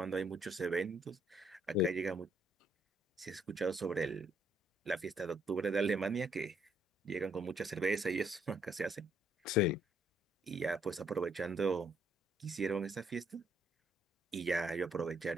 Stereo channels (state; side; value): normal; both; correlation 0.69